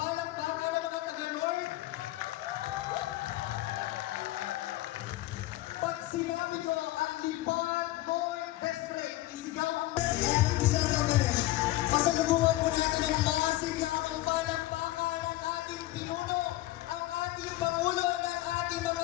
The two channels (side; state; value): right; quieter; 17.1 dB